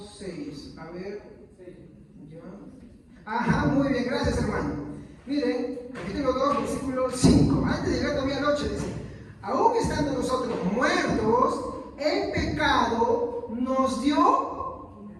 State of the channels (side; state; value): both; identical; correlation 1.00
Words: 6. A ver. ¿Ya? Ajá, muy bien, gracias, hermano. Miren, capítulo 2, versículo 5. Antes de llegar todavía a la 8, dice: aún estando nosotros muertos en pecado, nos dio.